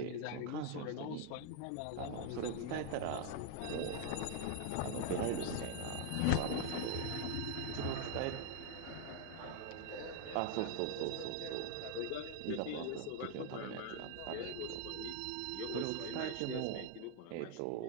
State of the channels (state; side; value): different; both; correlation 0.00